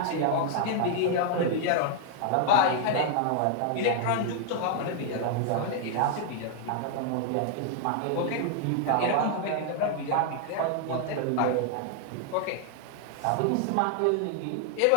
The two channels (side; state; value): both; different; correlation 0.00